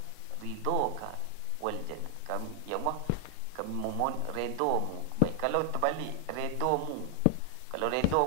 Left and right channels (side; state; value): both; different; correlation 0.00